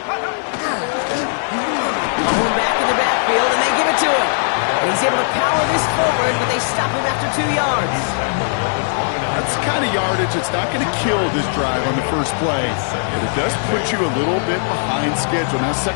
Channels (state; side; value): silent; right; 56 dB below the other